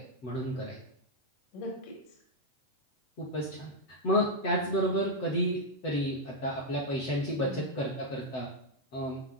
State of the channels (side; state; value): right; late; 7.9 ms